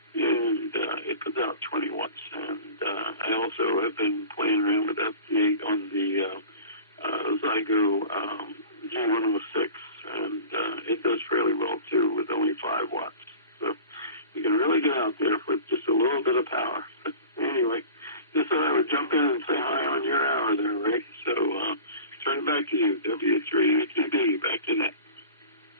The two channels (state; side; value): inverted; both; correlation -0.39